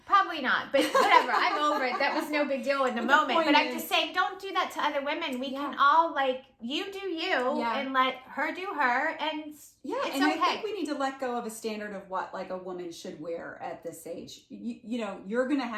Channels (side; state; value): both; identical; correlation 1.00